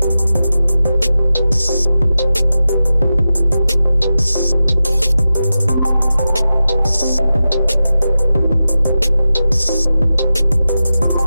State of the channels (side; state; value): both; inverted; correlation -0.92